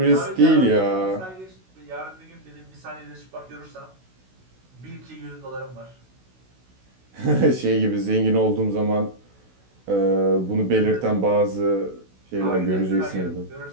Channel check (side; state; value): left; late; 16 ms